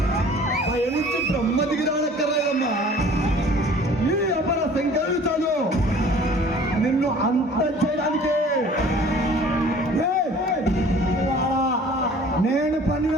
బ్రహ్మ దిగిరానక్కర్లేదమ్మా. ఈ అపర శంకరుడు నిన్ను అంత చేయడానికి నేను పన్నిన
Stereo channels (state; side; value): normal; both; correlation 0.49